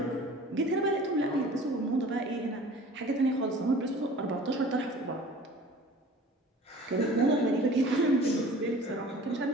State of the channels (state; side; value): normal; both; correlation 0.45